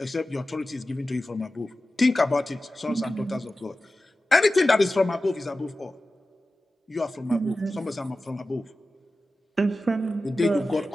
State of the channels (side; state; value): both; normal; correlation 0.94